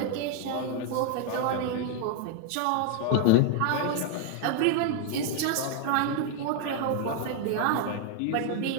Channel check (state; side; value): different; both; correlation 0.01